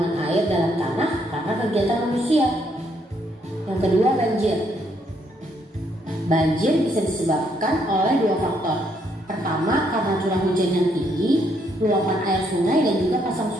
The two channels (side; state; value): both; normal; correlation 0.72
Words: air dalam tanah karena kegiatan manusia. Yang kedua, banjir. Banjir bisa disebabkan oleh 2 faktor. Pertama, karena curah hujan yang tinggi, luapan air sungai dan juga pasang